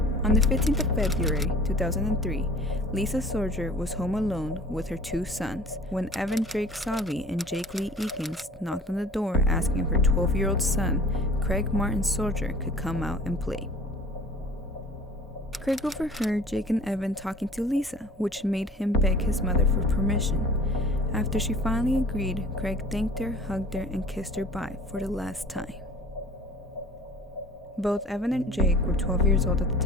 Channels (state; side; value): normal; both; correlation 0.47